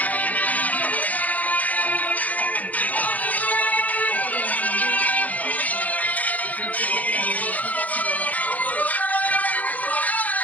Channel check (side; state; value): right; late; 0.077 ms